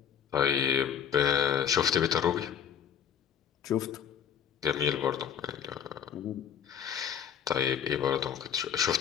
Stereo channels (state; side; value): quieter; right; 8.3 dB